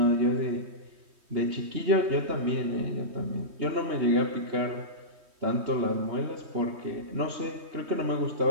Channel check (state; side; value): late; left; 3.1 ms